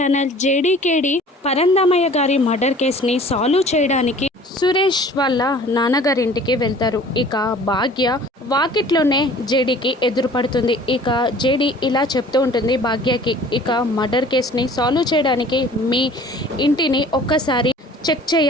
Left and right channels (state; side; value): normal; both; correlation 0.48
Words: జేడీకేడి పరందామయ్య గారి murder కేసుని సాల్వ్ చేయడానికి సురేష్ వాళ్ళ నాన్నగారింటికి వెళ్తారు. ఇక భాగ్య వాకిట్లోనే జేడీకి ఎదురుపడుతుంది. ఇక జేడీ ఇలా చెప్తూ ఉంటుంది భాగ్యకి, ఇక మర్డర్ కేసుని సాల్వ్ చేయడానికి మీ ఇంటిని ఒక్కసారి చెక్